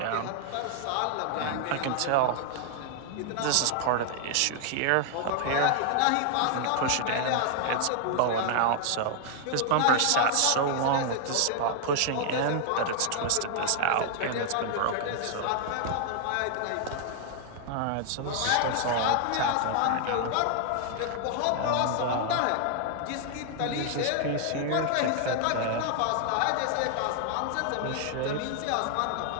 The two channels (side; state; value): both; different; correlation 0.00